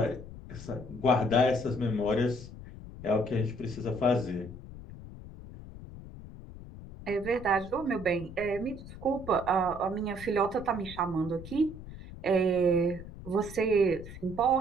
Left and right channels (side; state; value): left; noise; rumble, 14 dB below the sound